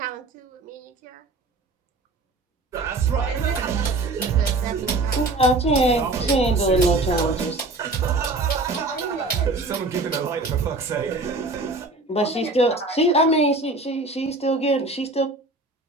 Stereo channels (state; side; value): quieter; left; 3.0 dB